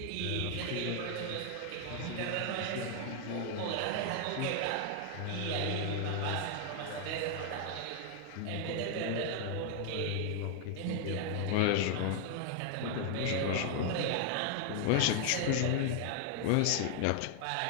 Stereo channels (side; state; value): both; different; correlation 0.00